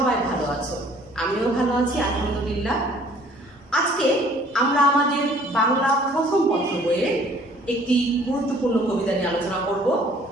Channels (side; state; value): both; normal; correlation 0.56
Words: ভালো আছো। আমিও ভালো আছি আলহামদুলিল্লাহ। আজকে আমরা আমাদের বাংলা প্রথম পত্র বইয়ের একটি গুরুত্বপূর্ণ কবিতা নিয়ে আলোচনা করব।